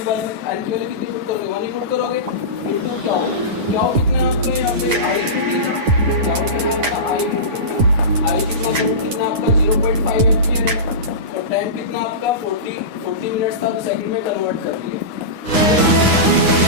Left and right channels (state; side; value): late; left; 9.9 ms